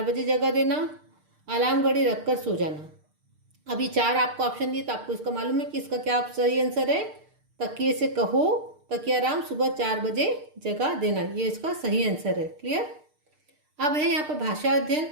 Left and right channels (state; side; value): late; left; 6.6 ms